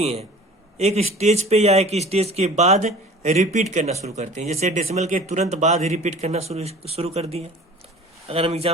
हैं, एक स्टेज पे या एक स्टेज के बाद रिपीट करना शुरू करते हैं। जैसे डेसिमल के तुरंत बाद ही रिपीट करना शुरू कर दिए। अगर हम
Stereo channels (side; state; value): both; normal; correlation 0.44